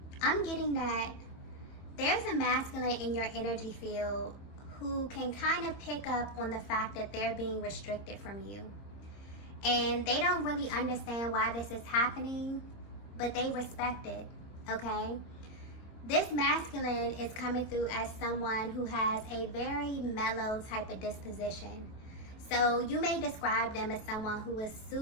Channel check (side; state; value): right; late; 26 ms